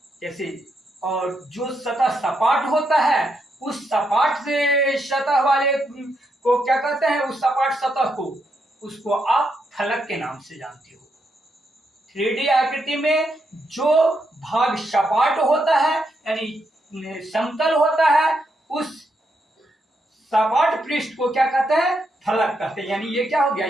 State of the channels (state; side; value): normal; both; correlation 0.80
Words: जैसे, और जो सतह सपाट होता है उस सपाट से सतह वाले को क्या कहते हैं, उस सपाट सतह को, उसको आप फलक के नाम से जानते हो। 3D आकृति में जो भाग सपाट होता है यानी समतल होता है, उस सपाट पृष्ठ को क्या कहते हैं, फलक कहते हैं। यानी ये क्या हो गया,